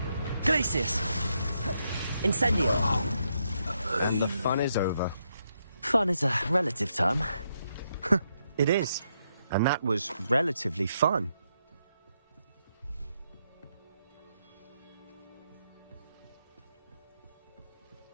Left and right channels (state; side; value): inverted; both; correlation -0.80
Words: Glacius. Incendio. And the fun is over. Fun is a relative term. It is. And that was relatively fun.